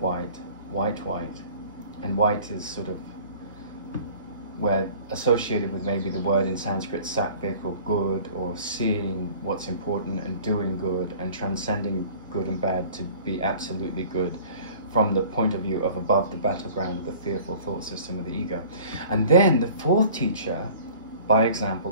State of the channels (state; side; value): inverted; both; correlation -0.47